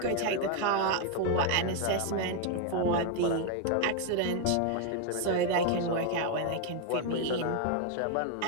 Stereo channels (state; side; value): different; both; correlation 0.01